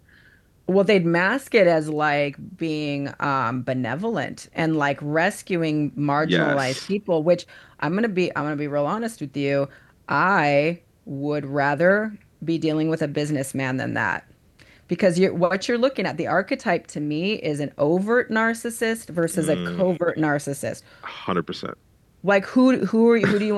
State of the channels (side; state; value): both; identical; correlation 1.00